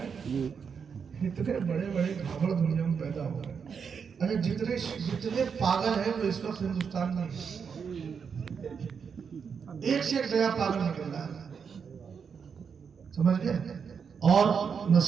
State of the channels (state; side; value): quieter; left; 6.4 dB